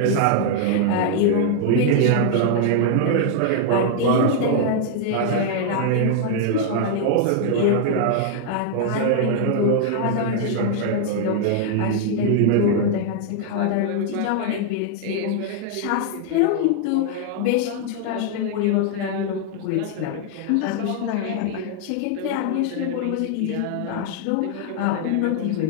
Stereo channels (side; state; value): both; different; correlation 0.00